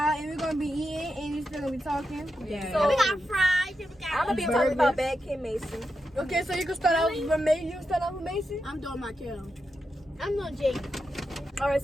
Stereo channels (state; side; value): normal; both; correlation 0.87